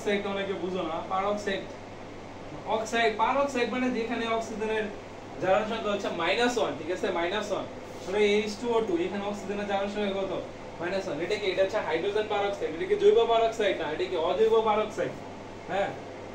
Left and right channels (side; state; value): both; identical; correlation 1.00